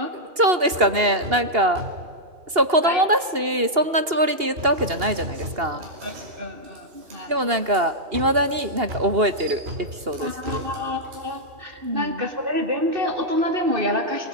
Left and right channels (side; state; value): left; late; 2.8 ms